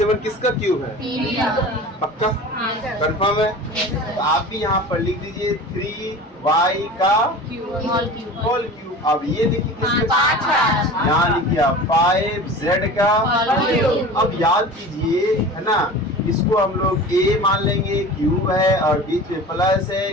किसका क्यूब है? पक्का कंफर्म है? तो आप भी यहाँ पर लिख दीजिए 3y का होल क्यूब। अब ये देखिए किसका, यहाँ लिखिए आप 5z का। अब याद कीजिए, है ना, इसको हम लोग a मान लेंगे, क्यूब है और बीच में प्लस है,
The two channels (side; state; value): both; normal; correlation 0.37